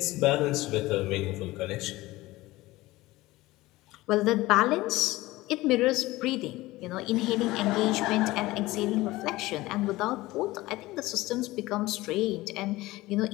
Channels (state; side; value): quieter; right; 18.9 dB